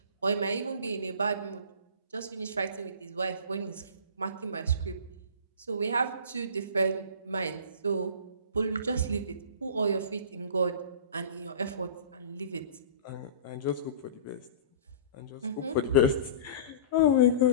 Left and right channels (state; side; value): inverted; both; correlation -0.38